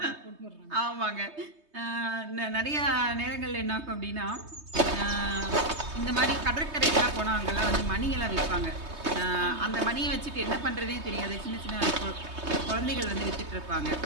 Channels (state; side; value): late; left; 3.2 ms